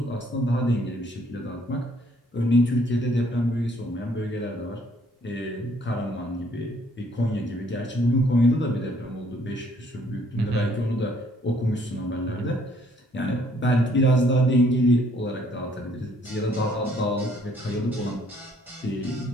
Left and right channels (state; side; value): normal; both; correlation 0.64